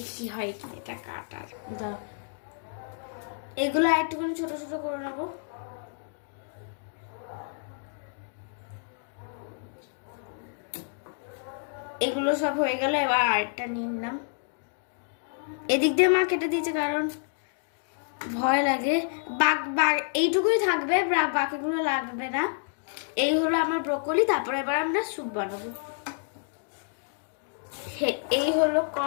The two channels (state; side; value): silent; right; digital silence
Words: হয় কি এটা কাটার। এগুলো একটুখানি ছোট ছোট করে নেবো। এগুলো সব হয়ে গেল, এবার আরেকটা নিয়ে নিলাম। এদিক দিয়ে মা কেটে দিয়েছে কারণ ভয় লাগে, এইটুকুই থাকবে, বাকিগুলো লাগবে না। এই হলো আমার ব্রোকলি। তারপরে এবার আমরা স্যুপ বানাবো। এই হলো